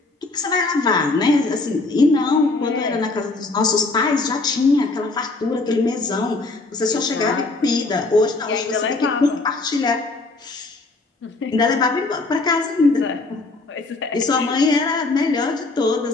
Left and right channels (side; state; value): right; quieter; 3.4 dB